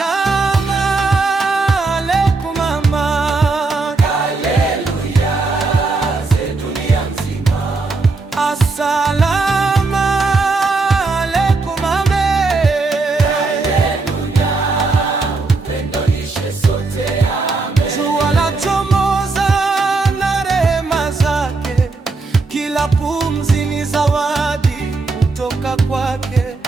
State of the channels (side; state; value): left; quieter; 3.8 dB